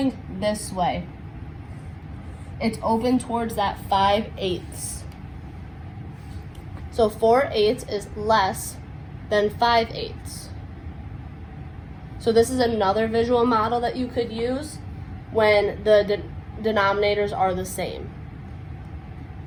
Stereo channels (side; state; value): both; identical; correlation 1.00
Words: this way. It's open towards that 5/8. So 4/8 is less than 5/8. So this is another visual model that you could use when the denominators are the same.